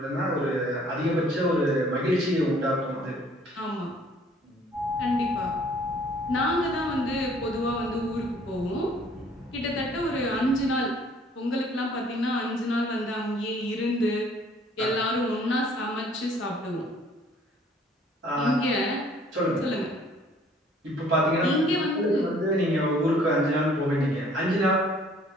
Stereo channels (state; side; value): normal; both; correlation 0.58